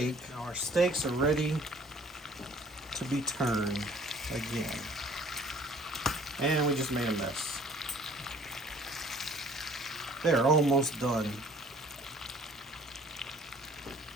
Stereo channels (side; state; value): both; normal; correlation 0.54